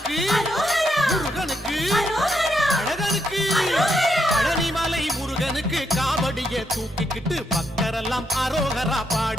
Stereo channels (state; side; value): normal; both; correlation 0.79